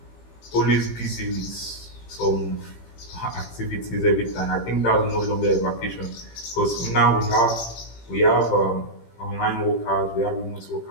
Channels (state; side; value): late; right; 17 ms